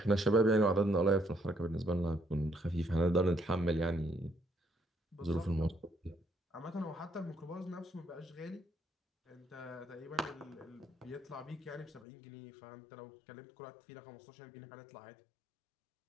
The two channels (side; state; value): right; drops out; at 12.1 s